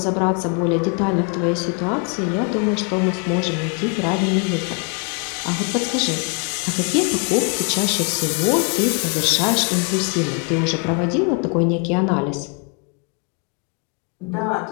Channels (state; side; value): quieter; right; 37.6 dB